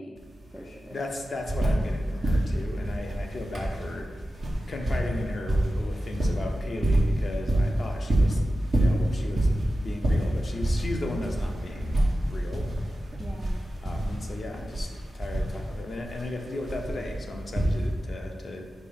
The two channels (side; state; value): both; normal; correlation 0.94